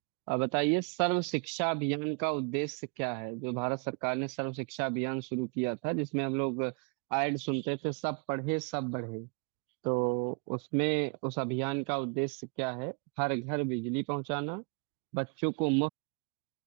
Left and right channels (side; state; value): left; quieter; 34.9 dB